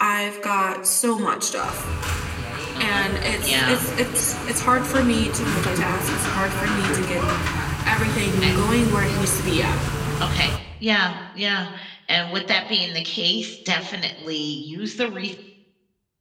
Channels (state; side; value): identical; both; correlation 1.00